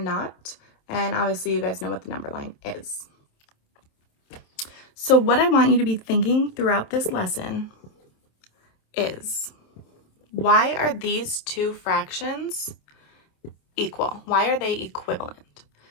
And obviously you guys know what the number line is. So what I want you to be thinking throughout this lesson is, why are these two fractions equal? Why are they equivalent?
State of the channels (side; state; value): right; late; 27 ms